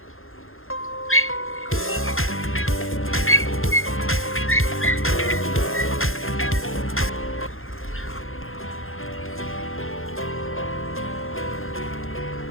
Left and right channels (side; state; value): right; late; 0.60 ms